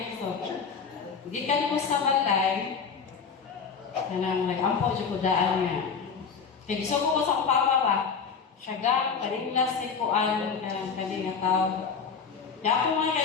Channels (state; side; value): quieter; right; 5.9 dB